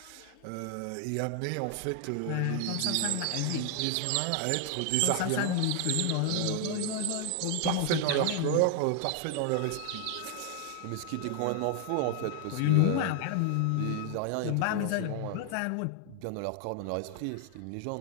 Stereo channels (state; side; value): different; both; correlation 0.00